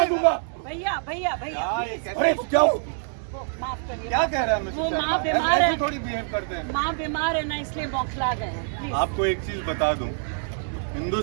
दूंगा। भैया अरे क्या माफ करिए। क्या कह रहा है मिस्टर वो माँ शर्मा? बीमार ऐसे है। थोड़ी बिहेव करते हैं। माँ बीमार है ना, इसलिए बौखला गए हैं। Please। आपको एक चीज बता दूं,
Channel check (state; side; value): silent; left; 61 dB below the other